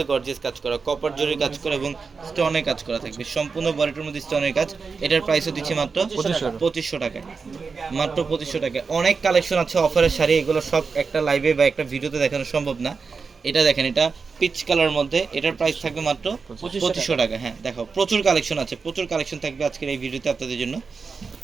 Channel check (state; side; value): quieter; left; 4.9 dB